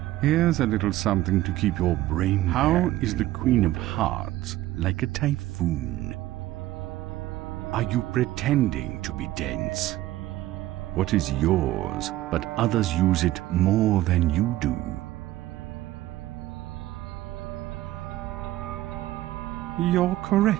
Here's a little something to keep your brain. How is the Queen of Hearts like a typhoon? Are you pretending to be dense? What is yours, but others use it more than you do? You're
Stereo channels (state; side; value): quieter; left; 15.5 dB